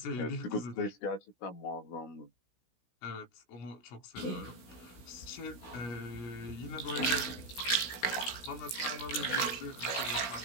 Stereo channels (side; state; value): right; late; 16 ms